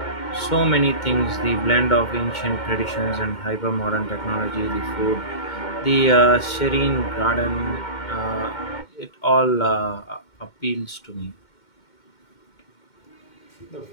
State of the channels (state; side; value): late; right; 2.1 ms